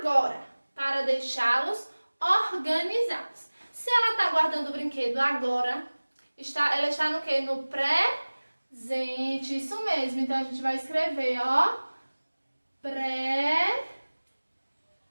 para deixá-los organizados. Se ela está guardando o brinquedo agora, ela está no quê? No presente. Isso mesmo. Então a gente vai escrever, ó. Presente.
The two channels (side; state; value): both; inverted; correlation -1.00